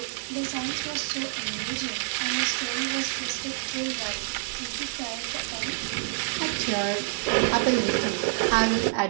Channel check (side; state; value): left; silent; digital silence